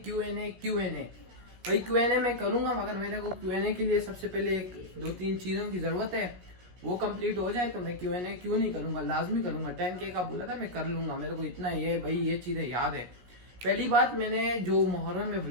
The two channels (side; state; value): left; late; 17 ms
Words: भाई क्यूएनए मैं करूंगा, मगर मेरे को क्यूएनए के लिए सबसे पहले एक दो तीन चीज़ों की ज़रूरत है। वो कंप्लीट हो जाए तो मैं क्यूएनए क्यों नहीं करूंगा, लाजमी करूंगा। 10K का बोला था मैं कर लूंगा, मेरे को इतना ये भाई ये चीज़ें याद है। पहली बात, मैंने जो मुहर्रम में